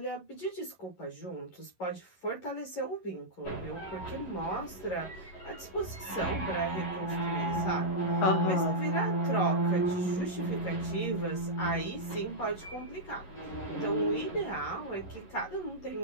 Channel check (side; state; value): right; late; 11 ms